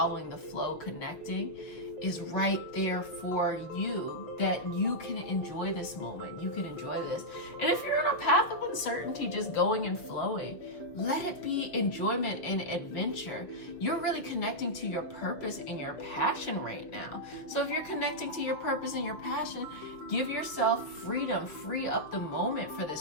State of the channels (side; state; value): right; late; 6.4 ms